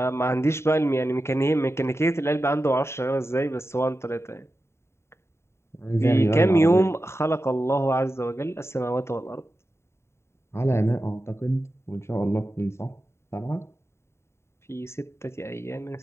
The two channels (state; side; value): late; right; 0.13 ms